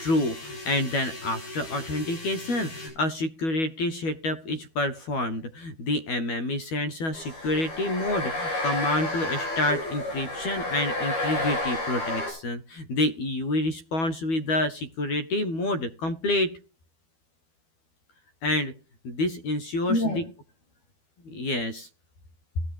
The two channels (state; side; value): late; right; 12 ms